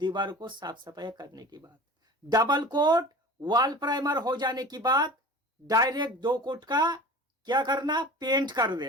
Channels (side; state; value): both; normal; correlation 0.38